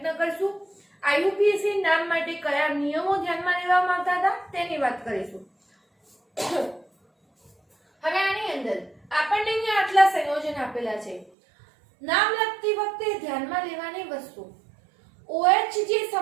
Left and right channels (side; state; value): left; drops out; at 11.3 s